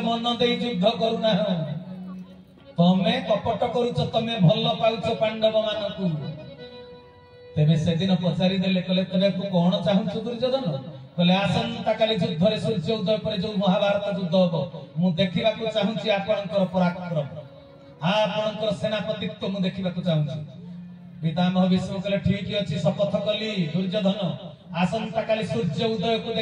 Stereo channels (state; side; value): identical; both; correlation 1.00